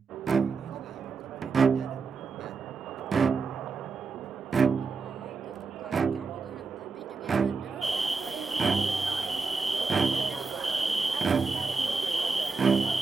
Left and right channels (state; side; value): quieter; left; 4.5 dB